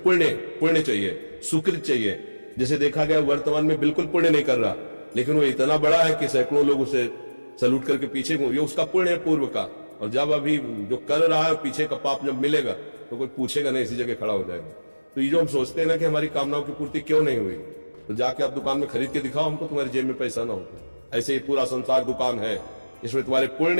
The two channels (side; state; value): both; inverted; correlation -1.00